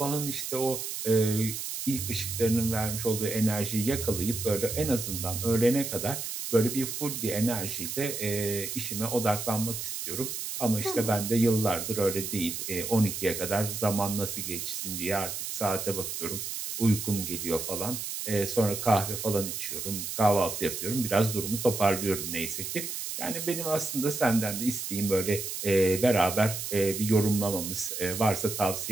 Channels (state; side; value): noise; right; hiss, 5 dB below the sound